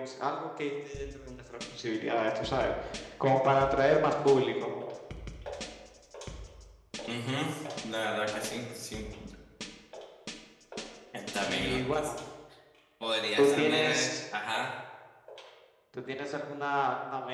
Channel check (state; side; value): identical; both; correlation 1.00